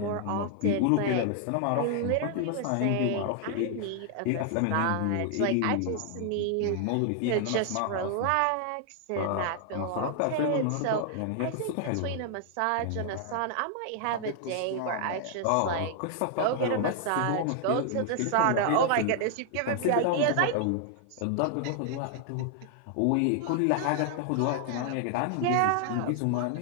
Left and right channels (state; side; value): different; both; correlation 0.00